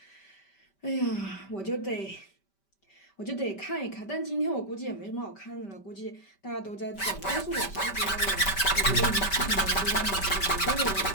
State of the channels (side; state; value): right; late; 5.1 ms